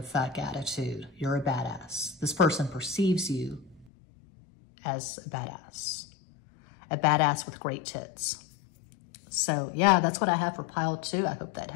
fuck attitude. You're a badass. This person perceives you as a badass with great tits. So yeah, that's what I have for pile 2. I hope that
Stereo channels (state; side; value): drops out; right; at 3.9 s